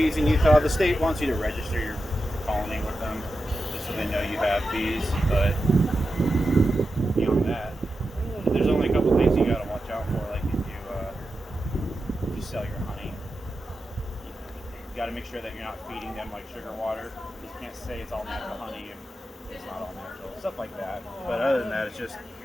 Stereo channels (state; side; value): normal; both; correlation 0.90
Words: in Utah. The state wants you to register your colony with them, just so they know you have bees, but beyond that, there's only a couple things you gotta watch out for, like if you sell your honey, you gotta make sure that you're not feeding them like sugar water. You can't say it's all natural honey if it's not all natural, stuff like that. But other than that, it's just